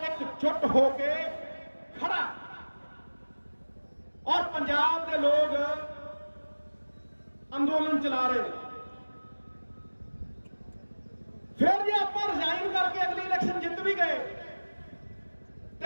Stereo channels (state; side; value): inverted; both; correlation -1.00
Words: ਇਕਜੁੱਟ ਹੋ ਕੇ ਖੜਾ ਔਰ ਪੰਜਾਬ ਦੇ ਲੋਕ ਅੰਦੋਲਨ ਚਲਾ ਰਹੇ ਨੇ। ਫਿਰ ਜੇ ਆਪਾਂ ਰਿਜ਼ਾਈਨ ਕਰਕੇ ਅਗਲੀ ਇਲੈਕਸ਼ਨ ਜਿੱਤ ਵੀ ਗਏ